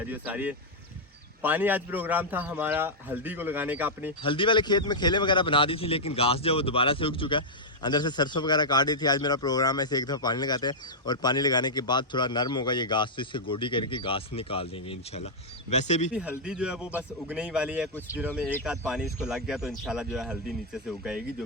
सारी है। पानी आज प्रोग्राम था हमारा हल्दी को लगाने का। अपनी हल्दी वाले खेत में खेले वगैरह बना दी थी, लेकिन घास जो है वो दोबारा से उग चुका है। अंदर से सरसों वगैरह काट दी थी। आज मेरा प्रोग्राम है, इसे एक दफ़ा पानी लगाते हैं और पानी लगाने के बाद थोड़ा नरम होगा ये घास, तो इससे गोडी करके घास निकाल देंगे इंशाल्लाह। वैसे भी हल्दी जो है वो बस उगने ही वाली है, कुछ दिनों में एक आध पानी इसको लग गया तो इंशाल्लाह जो है हल्दी नीचे से उगाएगी, जो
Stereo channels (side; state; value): both; normal; correlation -0.06